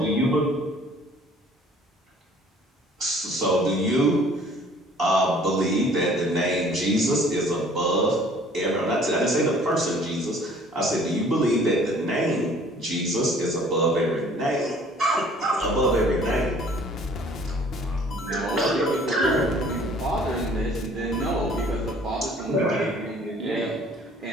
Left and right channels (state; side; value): normal; both; correlation 0.54